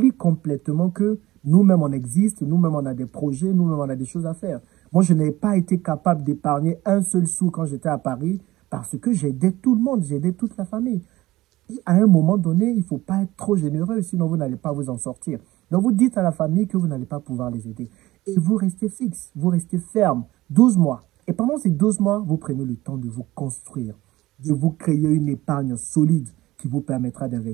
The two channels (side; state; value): left; quieter; 17.5 dB